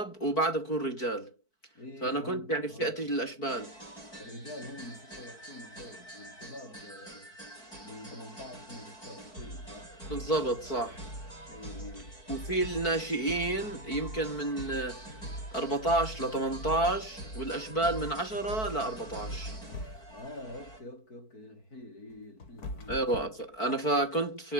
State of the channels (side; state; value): right; late; 4.5 ms